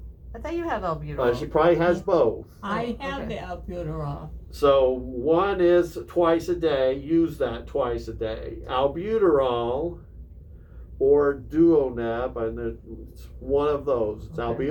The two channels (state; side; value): identical; both; correlation 1.00